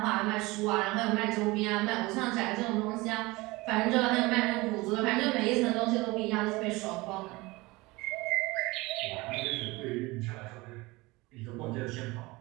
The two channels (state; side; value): quieter; left; 22.4 dB